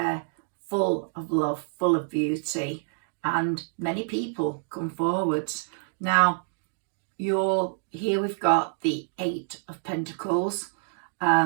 full of love, full of beauty, and many people come forwards. Now, here we've got the Eight of Pentacles.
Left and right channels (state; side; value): silent; left; digital silence